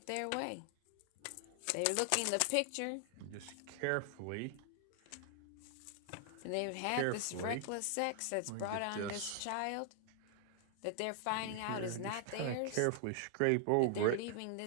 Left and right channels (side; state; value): both; different; correlation 0.00